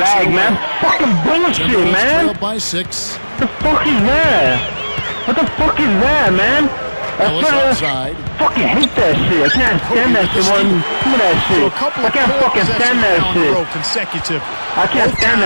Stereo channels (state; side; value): inverted; both; correlation -1.00